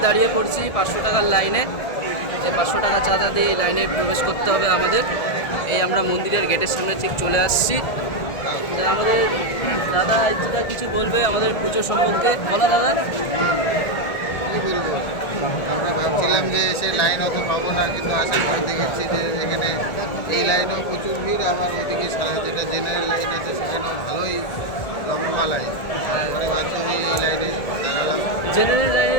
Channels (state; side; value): late; right; 1.7 ms